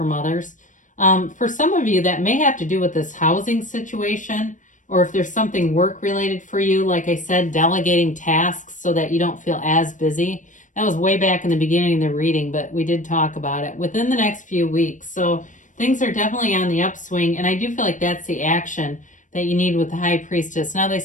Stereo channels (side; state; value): right; late; 0.37 ms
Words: others. For some of you, that may have to do with this housing situation, or if there's something work-related for you, like I said, delegating tasks so that you don't feel as busy. That was way back in the beginning of the reading, but we did talk about it within the next few weeks. So things are definitely on the upswing, and I do feel like that's the action that you need with the High Priestess. Now, they